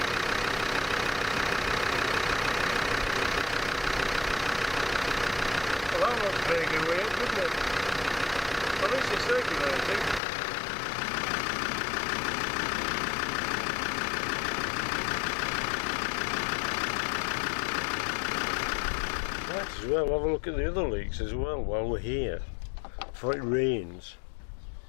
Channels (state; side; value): drops out; right; at 10.2 s